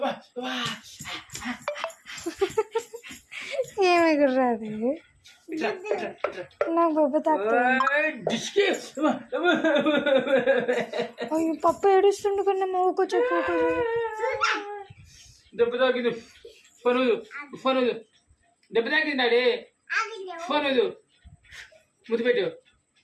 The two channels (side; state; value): both; identical; correlation 1.00